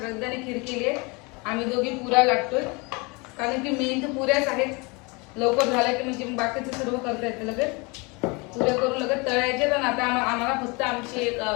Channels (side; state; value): right; quieter; 28.1 dB